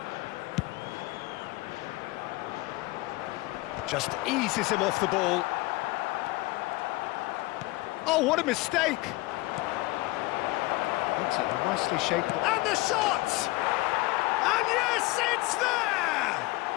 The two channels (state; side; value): quieter; right; 20.8 dB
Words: Just eases him off the ball. Oh, what a mistake! That's a nicely shaped... And the shot! And yes, it's there!